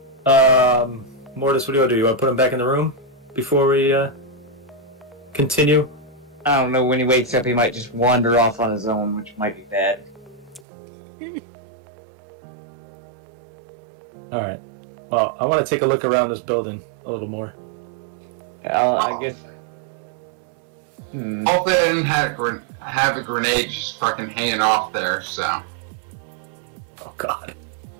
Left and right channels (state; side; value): drops out; left; at 10.6 s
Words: Mordis, what do you want to do? You want to put him back in the room before we continue? I don't know, when he wakes up, he might just wander off on his own, which might be bad. All right. Well, I want to take a look around this building a little more. I guess. Hope they didn't have a grenade just fucking hanging off there, so. Oh God.